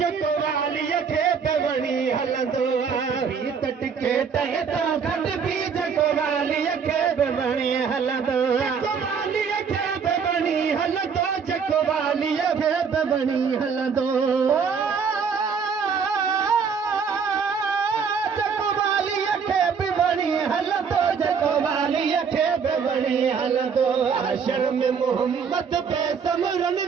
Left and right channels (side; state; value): left; quieter; 6.2 dB